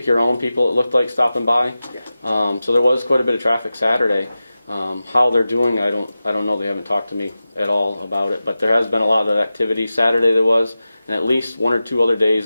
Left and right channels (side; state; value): both; inverted; correlation -0.94